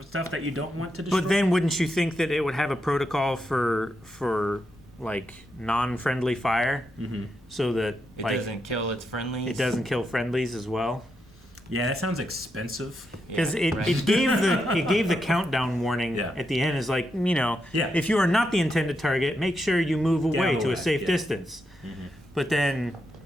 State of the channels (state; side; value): normal; both; correlation 0.83